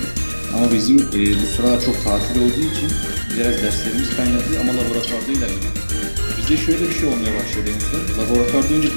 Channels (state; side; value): inverted; both; correlation -1.00